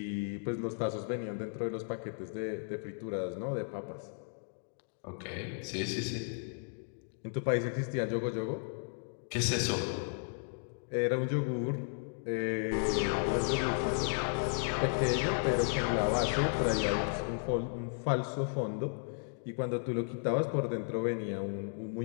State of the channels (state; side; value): silent; right; digital silence